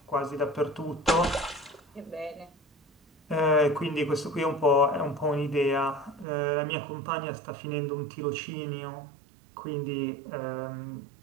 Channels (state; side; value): drops out; left; at 6.2 s